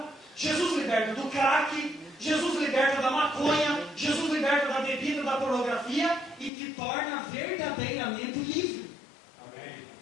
Jesus liberta do crack, Jesus liberta da maconha, Jesus liberta da bebida, da pornografia e te torna verdadeiramente livre. Amém.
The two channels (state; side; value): drops out; right; at 6.5 s